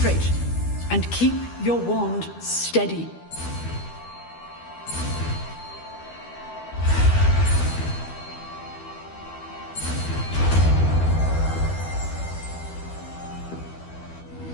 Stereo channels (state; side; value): late; right; 12 ms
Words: and keep your wand steady.